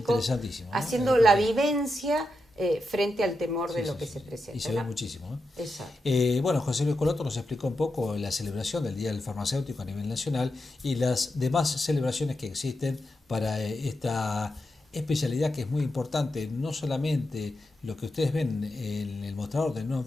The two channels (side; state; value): both; normal; correlation 0.87